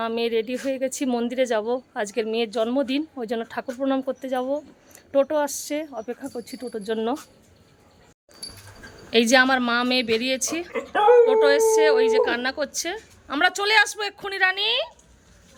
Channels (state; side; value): identical; both; correlation 1.00